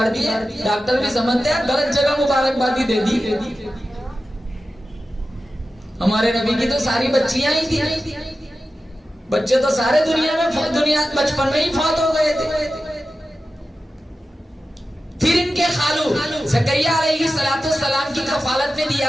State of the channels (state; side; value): normal; both; correlation 0.93